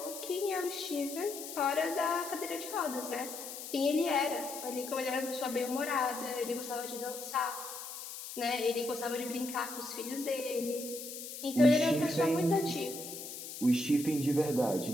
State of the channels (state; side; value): noise; left; hiss, 9 dB below the sound